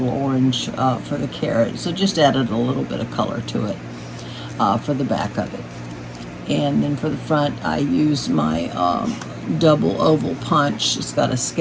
orange for the carrot. So just added a little bit of color to it for the back of it. And then for the front, I used my double oval punch. It's got a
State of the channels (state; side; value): identical; both; correlation 1.00